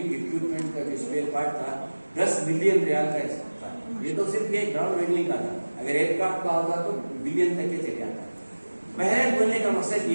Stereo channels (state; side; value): inverted; both; correlation -1.00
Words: इक्विपमेंट का जो स्पेयर पार्ट था 10 बिलियन रियाल का था। ये तो सिर्फ ये ग्राउंड हैंडलिंग का था, अगर एयरक्राफ्ट का होता तो बिलियन तक के चले जाता। पहले बोलने का मकसद ये